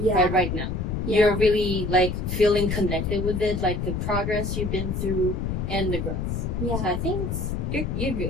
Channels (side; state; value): left; noise; rumble, 2 dB below the sound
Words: now. You're really, like, feeling connected with it, like the progress you've been through and the growth. Yeah. So I think you're